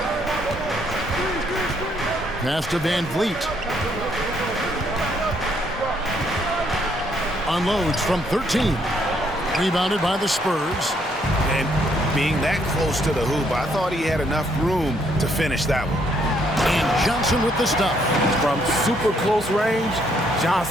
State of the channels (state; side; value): normal; both; correlation 0.70